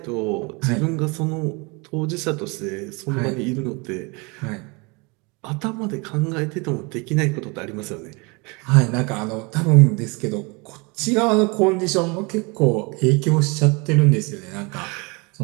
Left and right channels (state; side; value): quieter; left; 28.9 dB